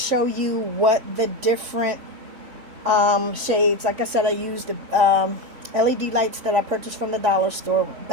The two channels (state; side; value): late; left; 3.6 ms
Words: you what the different shades, like I said, I used the LED lights that I purchased from the dollar store,